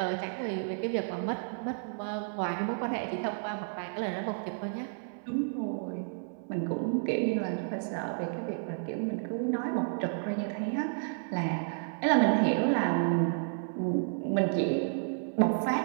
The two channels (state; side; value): silent; left; digital silence